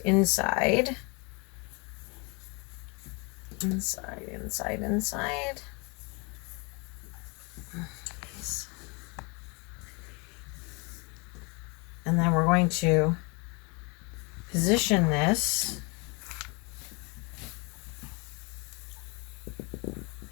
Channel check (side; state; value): right; quieter; 30.8 dB